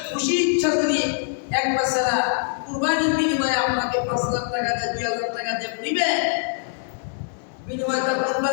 খুশি ইচ্ছা যদি এক বাচ্চারা কুরবানির বিনিময়ে আপনাকে 5 লাখ টাকা দেয়, 2000 টাকা দিয়ে নিবে, বিনিময়ে তার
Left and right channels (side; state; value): right; silent; digital silence